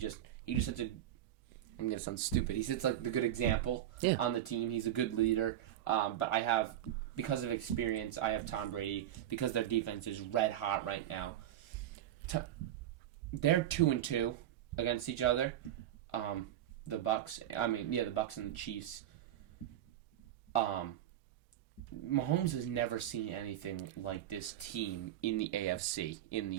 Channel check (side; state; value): left; quieter; 12.0 dB